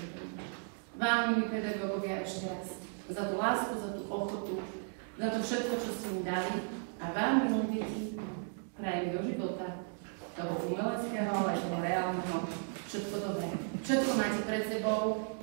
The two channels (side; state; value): left; silent; 54 dB below the other